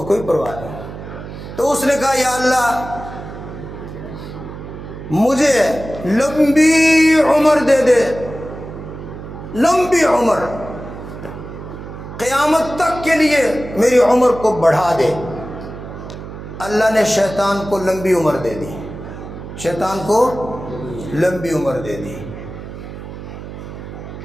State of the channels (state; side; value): noise; right; hum, 11 dB below the sound